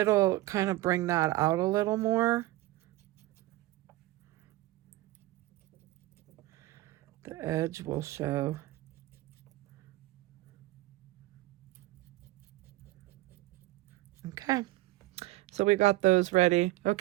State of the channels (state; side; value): quieter; left; 18.4 dB